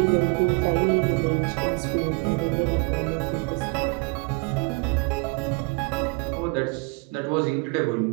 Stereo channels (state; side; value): quieter; left; 30.9 dB